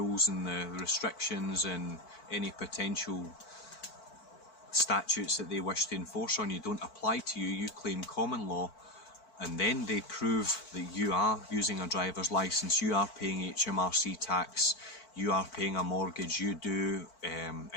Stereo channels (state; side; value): late; right; 4.5 ms